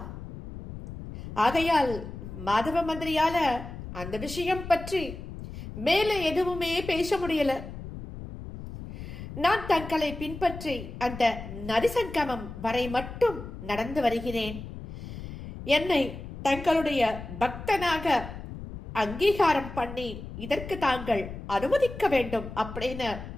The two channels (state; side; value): noise; left; rumble, 11 dB below the sound